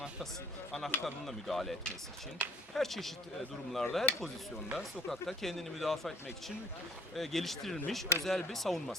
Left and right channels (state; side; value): normal; both; correlation 0.53